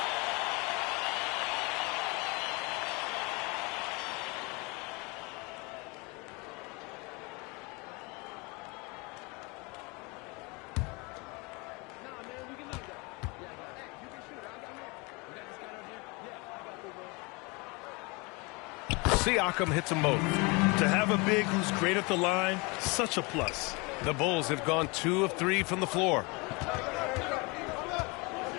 Siakam hits them both. To have a big who's great at the line, such a plus. The Bulls have gone 2 of 3 from the floor.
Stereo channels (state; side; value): quieter; right; 27.9 dB